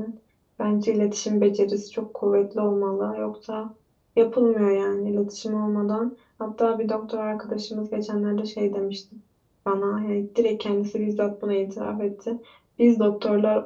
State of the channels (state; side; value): identical; both; correlation 1.00